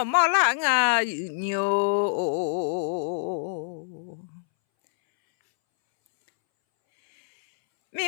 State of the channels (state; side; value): silent; right; 61 dB below the other